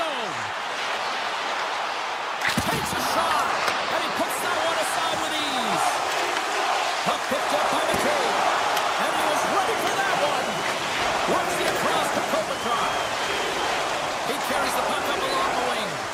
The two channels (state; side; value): identical; both; correlation 1.00